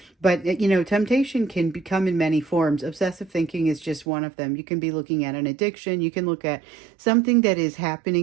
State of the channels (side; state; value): left; drops out; at 4.0 s